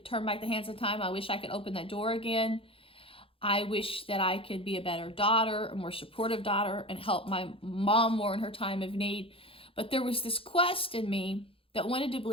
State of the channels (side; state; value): right; late; 0.27 ms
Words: turn back the hands of time. I wish I could open that door again. I wish that I could be a better daughter, a more supportive daughter, and help my mom more in her time of need. But there was this quest in me that wanted to